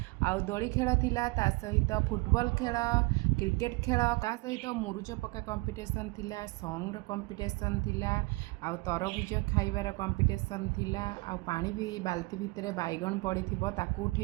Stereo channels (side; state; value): left; quieter; 25.4 dB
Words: आउ दोली खेल थिला ता सहित फुटबॉल खेल क्रिकेट खेल ता सहित मुरुज पका कंपटीशन थिला सॉन्ग कंपटीशन थिला आउ तरबुज खाइबार कंपटीशन थिला आउ पानी भी बाल्टी भितर बैगन पड़ी ताकू